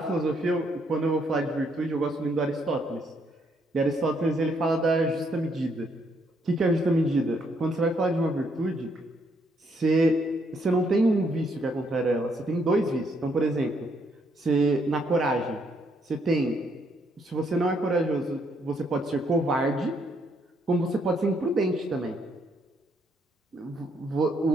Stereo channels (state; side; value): normal; both; correlation 0.72